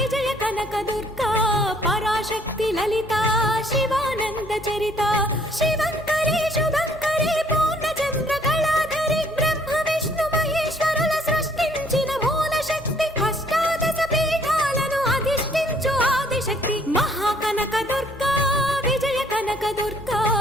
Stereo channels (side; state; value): both; normal; correlation 0.62